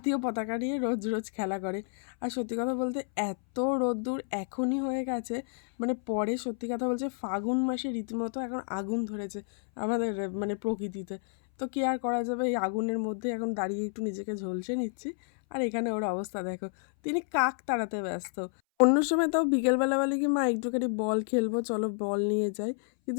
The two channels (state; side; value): silent; right; 58 dB below the other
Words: পতাকা নিয়ে রোজ রোজ খেলা করে। আর সত্যি কথা বলতে এত রোদ্দুর এখনই হয়ে গেছে, মানে পরে সত্যি কথা বলছে ফাগুন মাসে রীতিমতো এখন আগুন ধরেছে আমাদের মানে প্রকৃতিতে। তো কি আর করা যাবে, এই আগুনের মধ্যে এখন দাঁড়িয়ে একটু নিজেকে ঝলসে নিচ্ছি। আর এখানে ওর অবস্থা দেখো, তিনি কাক তাড়াতে ব্যস্ত। অন্য সময় তাও বিকেলবেলা বলে কি মা একটুখানি বল খেলবো, চলো বল নিয়ে যাই,